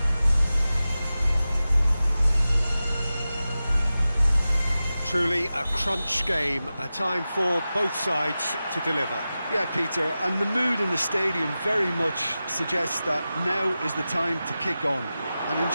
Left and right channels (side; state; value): both; inverted; correlation -0.94